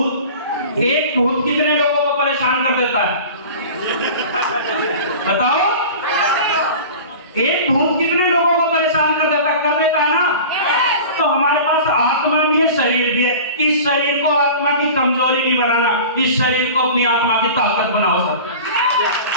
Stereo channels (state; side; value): inverted; both; correlation -0.37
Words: एक भूत कितने लोगों को परेशान कर देता है? बताओ, एक भूत कितने लोगों को परेशान कर देता है ना? तो हमारे पास आत्मा भी है, शरीर भी है। इस शरीर को आत्मा की कमजोरी नहीं बनाना, इस शरीर को अपनी आत्मा की ताकत बनाओ सब।